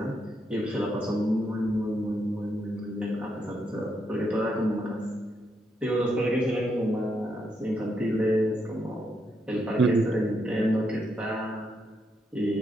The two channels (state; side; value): normal; both; correlation 0.79